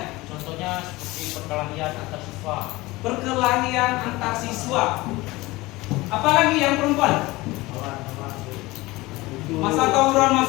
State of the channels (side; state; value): right; quieter; 20.6 dB